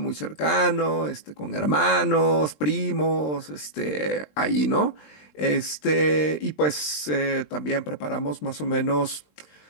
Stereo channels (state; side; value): late; right; 20 ms